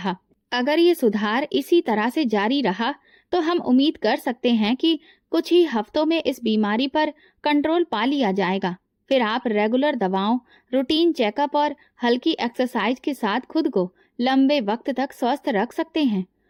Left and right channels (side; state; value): both; identical; correlation 1.00